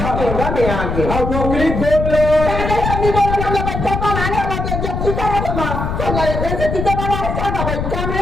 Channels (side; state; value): left; noise; rumble, 3 dB below the sound